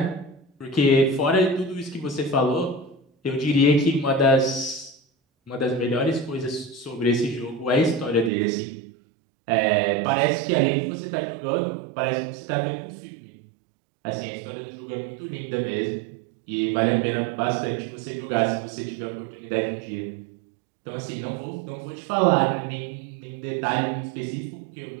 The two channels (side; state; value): left; drops out; at 8.3 s